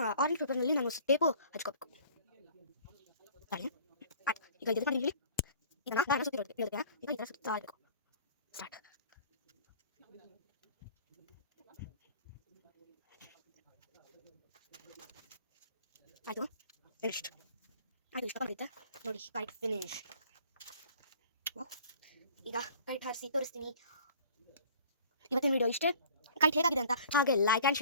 ಆರೆಂಜ್ ಪೇಪರ್ನಲ್ಲಿ ನಾನು ಟೇಪು ಹಚ್ಕೋಬೇಕು. ತಾಳಿ ಆಯ್ತು. ಈಗ ಇದು ಮಾಡಿ ಹೇಳಿ. ಈಗ ನಾನು ಸುತ್ತಿ ಹೇಳೋದಕ್ಕೆ ಈಗ ಈ ಥರ ಸುತ್ತಾ ಇರಬೇಕು. ಸ್ಟಾರ್ಟ್. ಆಯಿತು, ಫಿನಿಶ್ಡ್. ಆಯಿತು, ಇಷ್ಟ ಬಂದಿತ್ತೆ ನೋಡಿ, ಕೈಟ್ ಫಿನಿಶ್. ವಾವ್. ಈಗ ಕೈಟ್ ಹಾರಿಸಿ ತೋರಿಸ್ತೀನಿ. ಇವತ್ತಿನ ವಿಡಿಯೋ ಇಷ್ಟೇ. ಕೈಟ್ ಹೇಗಾಗಿದೆ ಅಂತ ಹಾಗೆ like and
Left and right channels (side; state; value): both; inverted; correlation -0.49